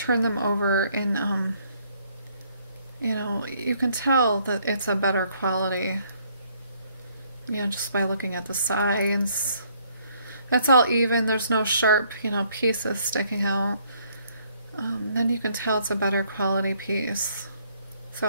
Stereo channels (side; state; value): both; inverted; correlation -0.66